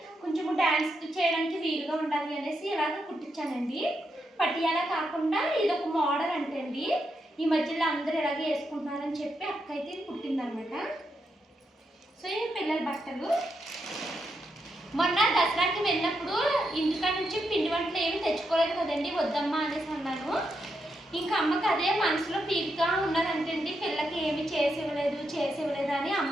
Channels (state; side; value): normal; both; correlation 0.83